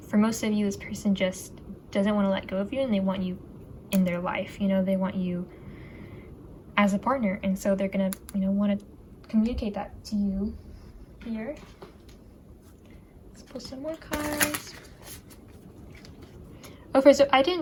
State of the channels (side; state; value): both; identical; correlation 1.00